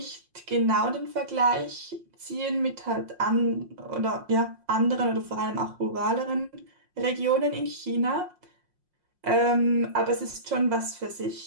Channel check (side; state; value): left; late; 5.6 ms